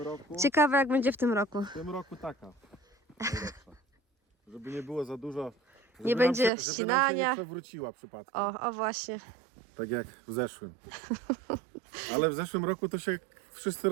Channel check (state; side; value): drops out; left; at 6.5 s